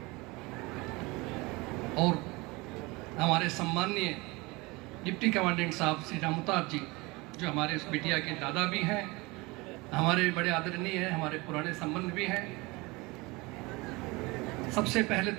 और हमारे सम्माननीय डिप्टी कमांडेंट साहब श्री रामताज जी, जो हमारे उस बिटिया के दादा भी हैं, हमारे बड़े आदरणीय हैं, हमारे पुराने संबंध भी हैं। सबसे पहले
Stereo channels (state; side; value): quieter; left; 24.1 dB